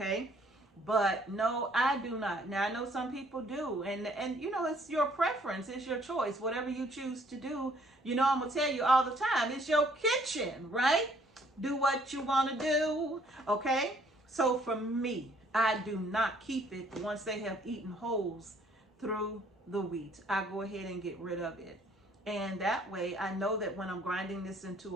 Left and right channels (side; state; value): both; normal; correlation 0.62